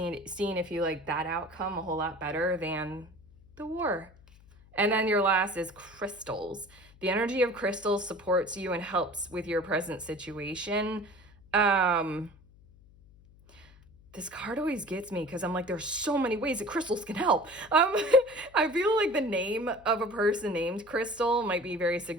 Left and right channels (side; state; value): left; noise; hum, 25 dB below the sound